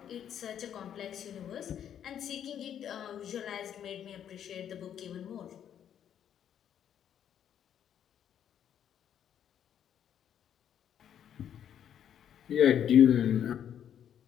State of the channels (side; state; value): right; quieter; 9.5 dB